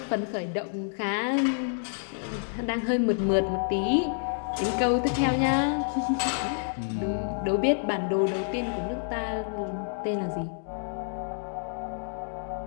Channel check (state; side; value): silent; right; digital silence